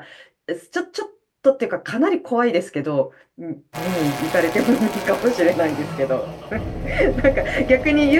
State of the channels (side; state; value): both; identical; correlation 1.00